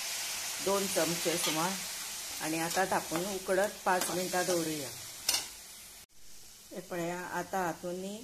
2 चमचे सुमार, आणि आता धापून उकडत 5 मिनटां दवरूया। हे पळया आता हातून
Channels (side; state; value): both; identical; correlation 1.00